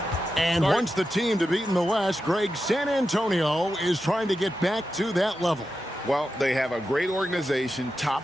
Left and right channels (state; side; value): normal; both; correlation 0.90